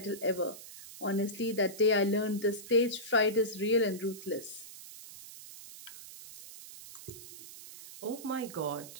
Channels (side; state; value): right; noise; hiss, 15 dB below the sound